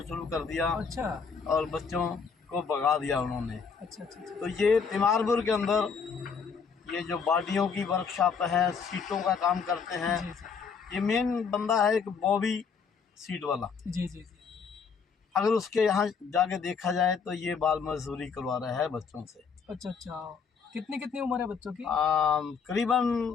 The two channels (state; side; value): quieter; right; 5.9 dB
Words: शुरू कर दिया अच्छा और बच्चों को भगा दिया उन्होंने। अच्छा अच्छा अच्छा तो ये तिमारपुर के अंदर ये जो बॉडियों की वर्कशॉप है, सीटों का काम करते हैं, जी जी ये मेन बंदा है एक बॉबी सीट वाला। जी जी जी अगर उसके यहाँ जाके देखा जाए तो ये बाल मजदूरी करवा रहा है बच्चों से। अच्छा अच्छा। कितनी कितनी उम्र है बच्चों की? करीबन